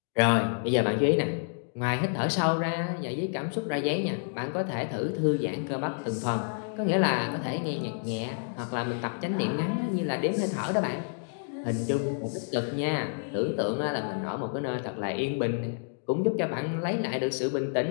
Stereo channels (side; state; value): right; silent; digital silence